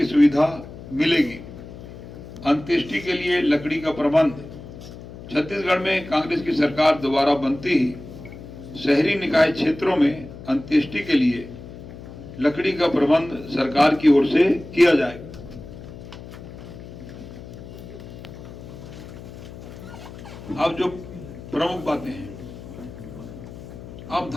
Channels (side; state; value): left; noise; hum, 14 dB below the sound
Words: सुविधा मिलेगी। अंत्येष्टि के लिए लकड़ी का प्रबंध। छत्तीसगढ़ में कांग्रेस की सरकार दोबारा बनती ही शहरी निकाय क्षेत्रों में अंत्येष्टि के लिए लकड़ी का प्रबंध सरकार की ओर से किया जाएगा। अब जो प्रमुख बातें हैं, अब